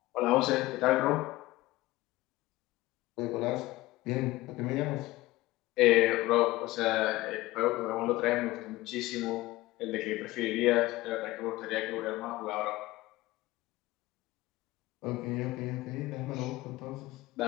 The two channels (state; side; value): quieter; right; 18.7 dB